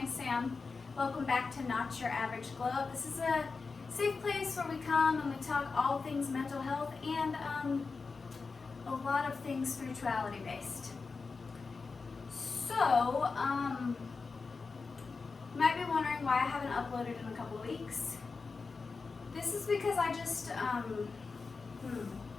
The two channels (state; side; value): quieter; right; 4.5 dB